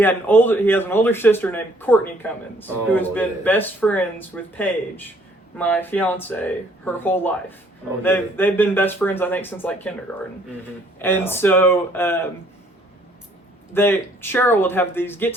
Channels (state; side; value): normal; both; correlation 0.62